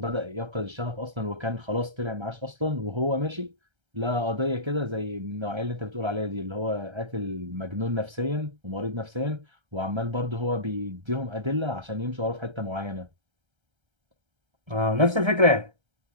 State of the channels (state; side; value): late; left; 1.3 ms